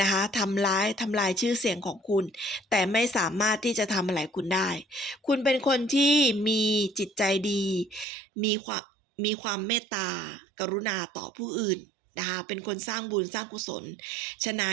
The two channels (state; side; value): drops out; left; at 8.1 s